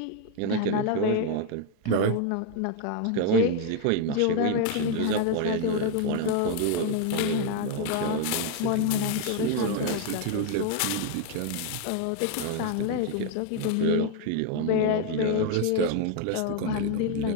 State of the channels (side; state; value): both; different; correlation 0.01